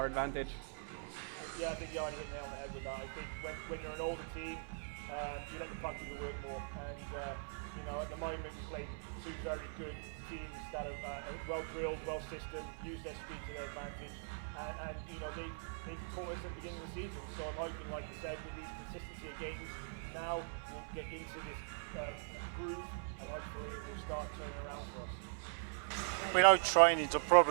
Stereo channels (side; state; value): left; silent; 50 dB below the other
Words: advantage. Yeah, I think you already hit the nail on the head with that. I think when you're an older team, you let the puck do the work more. And at the moment we played two very good teams that are well drilled, well systemed, use their speed to their advantage. And they caught us at the beginning of the season. So I'm hoping, like you said, with these consistency of games, now we'll get into this groove, and hopefully it will start turning around for us. We know training's a